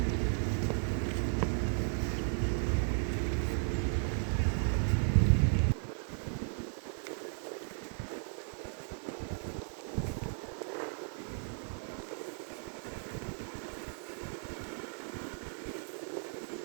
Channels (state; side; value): silent; left; 54 dB below the other